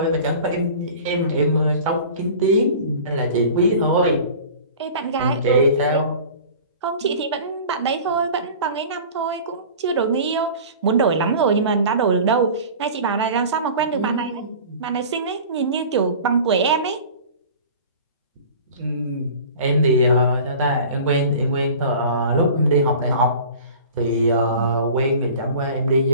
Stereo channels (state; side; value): inverted; both; correlation -0.41